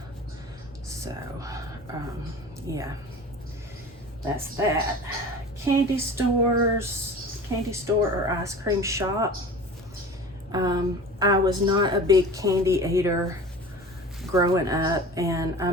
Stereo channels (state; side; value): normal; both; correlation 0.38